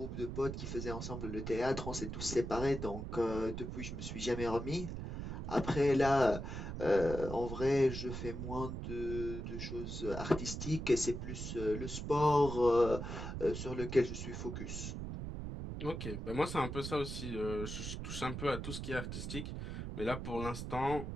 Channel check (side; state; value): right; noise; rumble, 6 dB below the sound